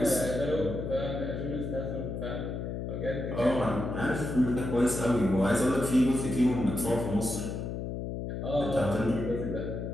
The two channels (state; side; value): noise; left; hum, 4 dB below the sound